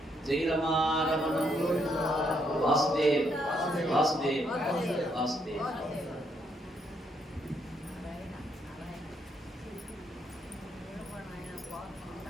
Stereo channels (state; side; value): normal; both; correlation 0.74